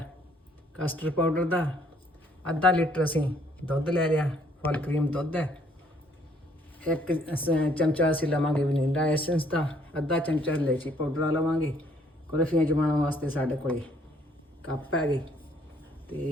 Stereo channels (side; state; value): both; normal; correlation 0.64